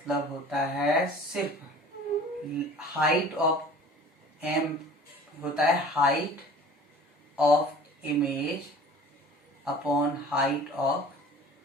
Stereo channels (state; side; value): normal; both; correlation 0.45